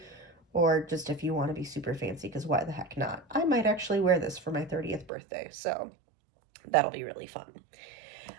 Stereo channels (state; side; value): drops out; left; at 5.1 s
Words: or just if you want to be super fancy, because why the heck not? I might actually wear this for my 30th birthday, so that'll be really fun.